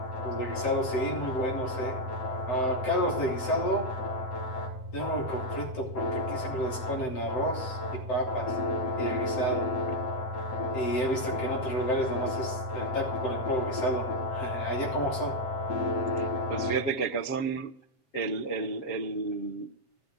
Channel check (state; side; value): late; right; 7.8 ms